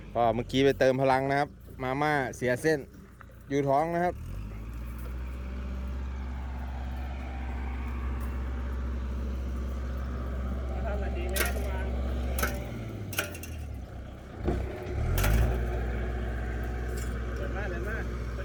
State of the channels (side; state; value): both; identical; correlation 1.00